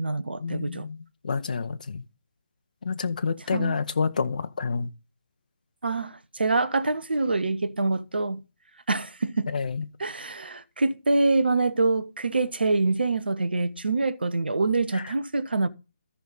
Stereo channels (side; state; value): both; inverted; correlation -0.84